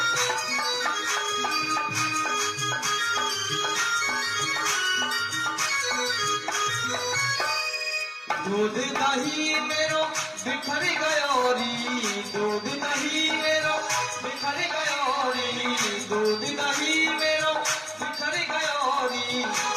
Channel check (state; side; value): identical; both; correlation 1.00